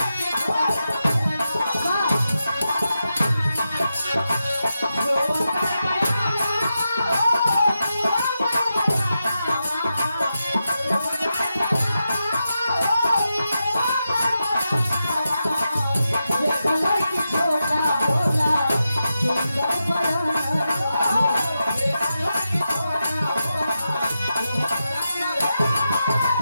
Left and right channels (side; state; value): both; inverted; correlation -0.89